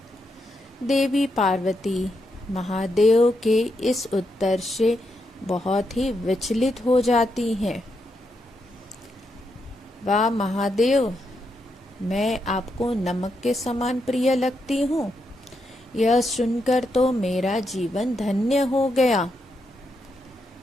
देवी पार्वती महादेव के इस उत्तर से बहुत ही विचलित हो जाती हैं। वाह महादेव, मैं आपको नमक के समान प्रिय लगती हूँ। यह सुनकर तो मेरा जीवन धन्य हो गया।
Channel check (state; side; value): normal; both; correlation 0.82